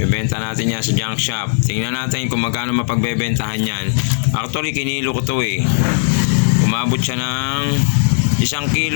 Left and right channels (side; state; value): right; silent; digital silence